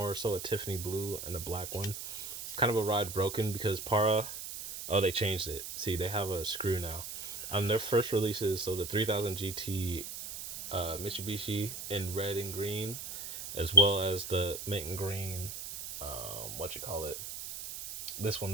so a Tiffany blue and a black one. Kind of a ride broken because Para. Oh, they changed it. See, they have a screw now. On their first releases, so the 3000 GT Mitsubishi in red and green, as well as the mint and green, what you call it? This one,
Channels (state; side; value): noise; right; hiss, 8 dB below the sound